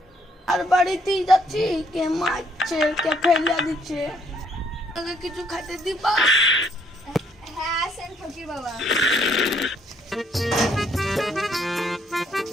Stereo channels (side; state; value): both; normal; correlation 0.68